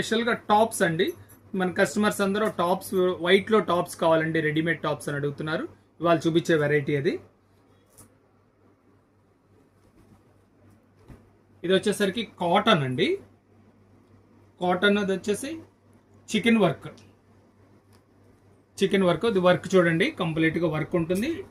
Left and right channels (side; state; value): both; identical; correlation 1.00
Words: టాప్స్ అండి. మన కస్టమర్స్ అందరూ టాప్స్ వైట్లో టాప్స్ కావాలండి, రెడీమేడ్ టాప్స్ అని అడుగుతున్నారు. ఇవాళ చూపించే వెరైటీ అది. ఇది వచ్చేసరికి కాటన్ అండి. కాటన్ అది వచ్చేసి చికెన్ వర్క్. ఇది వర్క్ చూడండి, కంప్లీట్గా వర్క్ ఉంటుంది.